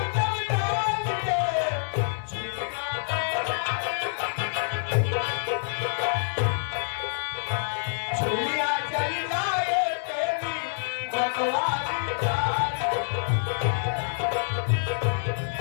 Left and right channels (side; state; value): right; silent; digital silence